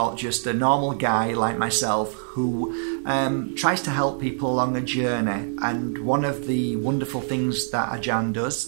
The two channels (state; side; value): silent; left; 62 dB below the other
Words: just a normal guy like myself who tries to help people along a journey. And one of the wonderful things that Ajahn